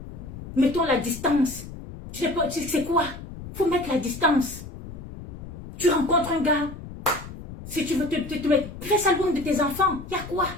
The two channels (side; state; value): left; noise; rumble, 13 dB below the sound